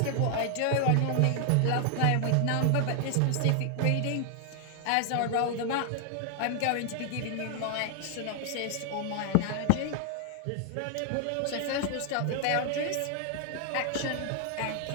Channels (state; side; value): different; both; correlation 0.00